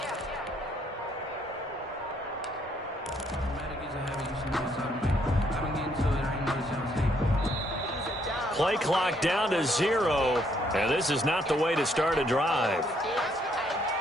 Play clock down to 0, and this is not the way to start a drive.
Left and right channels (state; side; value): normal; both; correlation 0.70